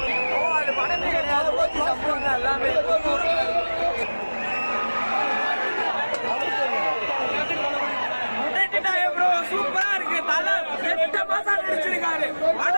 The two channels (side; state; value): both; inverted; correlation -1.00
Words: அது படமே கிடையாது, ஓட்டி சம்பவம் தான் எல்லாமே. சூப்பரா இருக்கு. தலை 8 மாசம் நடிச்சிருக்காரு.